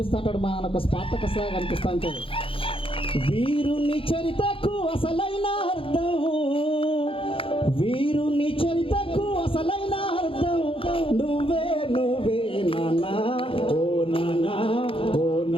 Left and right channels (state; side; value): late; right; 0.26 ms